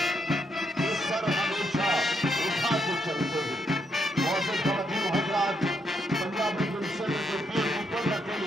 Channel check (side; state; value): both; normal; correlation 0.77